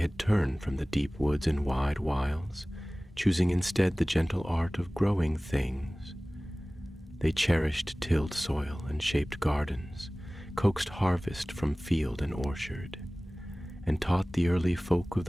turned from the deep woods and wide wilds, choosing instead the gentle art of growing things. They cherished tilled soil and shaped gardens, coaxed harvest from field and orchard, and taught the early folk of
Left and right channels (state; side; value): normal; both; correlation 0.98